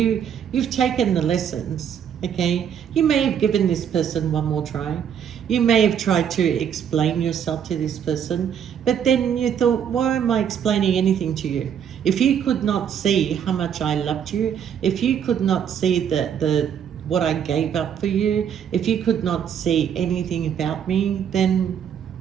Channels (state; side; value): quieter; left; 8.4 dB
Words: taken the lessons, okay? You may have given this person one more try. You may have tried to explain yourself to this person, but then you thought, why am I explaining anything to you? If you could not see how much I loved you, if you could not see the what I gave up for you, if you could not see anything about me, then